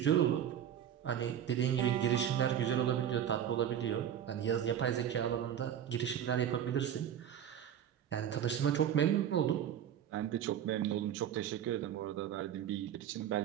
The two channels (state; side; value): quieter; left; 9.8 dB